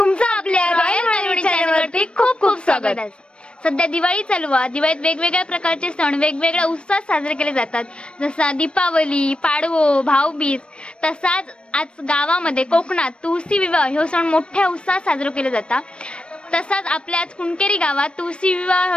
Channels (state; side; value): late; right; 0.057 ms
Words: आपल्या रॉयल मालवणी चॅनलवरती खूप खूप स्वागत आहे. सध्या दिवाळी चालू आहे. दिवाळीत वेगवेगळ्या प्रकारचे सण वेगवेगळ्या उत्साहात साजरे केले जातात. जसा दीपावली, पाडवो, भाऊबीज. तसाच आज गावामध्ये कोकणात तुळशी विवाह हे सण मोठ्या उत्साहात साजरे केले जातात. तसाच आपल्या आज कुणकेरी गावात तुळशी